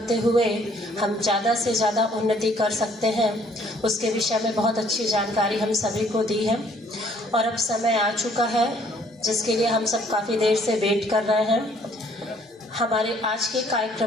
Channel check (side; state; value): both; normal; correlation 0.61